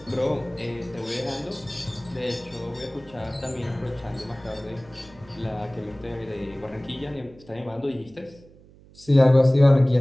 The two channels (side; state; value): right; noise; hum, 24 dB below the sound